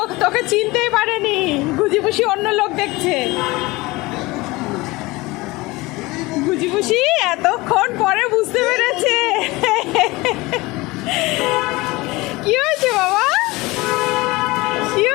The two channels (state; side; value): quieter; right; 21.8 dB